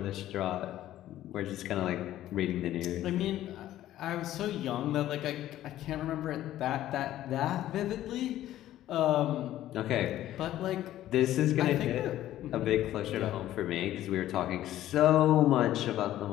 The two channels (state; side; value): quieter; right; 13.4 dB